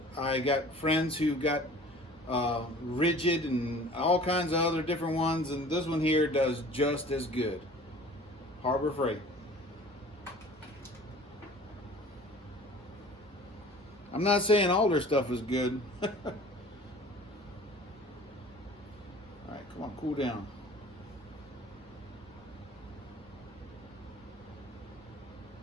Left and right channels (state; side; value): normal; both; correlation 0.46